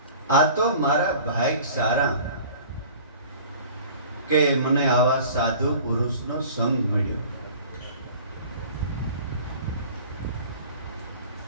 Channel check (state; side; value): inverted; both; correlation -0.45